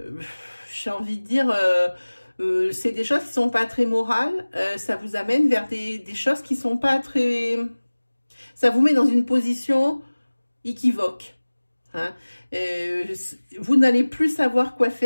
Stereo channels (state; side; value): inverted; both; correlation -1.00